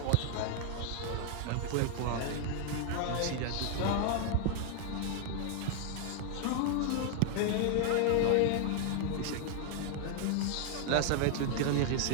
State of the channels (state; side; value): different; both; correlation 0.00